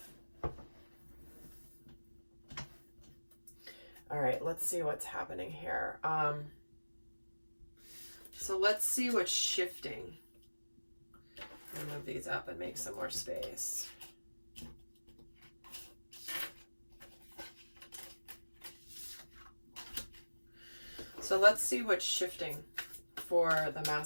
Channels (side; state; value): both; inverted; correlation -1.00